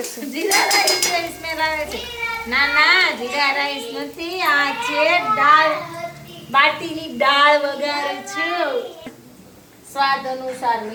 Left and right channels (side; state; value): both; identical; correlation 1.00